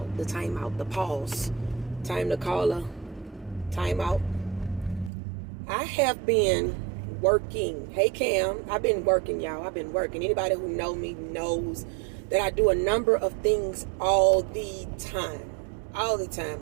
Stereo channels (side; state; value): left; drops out; at 5.1 s